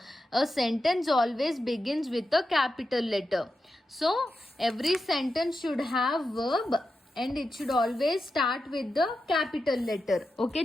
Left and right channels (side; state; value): both; normal; correlation 0.89